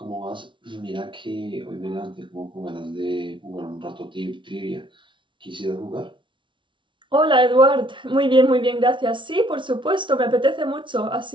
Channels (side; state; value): left; late; 0.24 ms